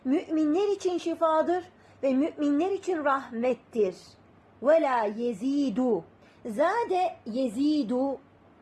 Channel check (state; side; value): identical; both; correlation 1.00